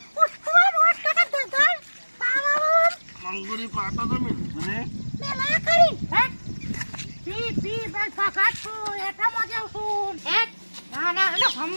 મંગુરી પાટો તો મેં ને મેલા કરી હેડ પી બસ ફકાત છું એટામાં જાઉં છું હેડ નાના અને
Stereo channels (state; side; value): inverted; both; correlation -1.00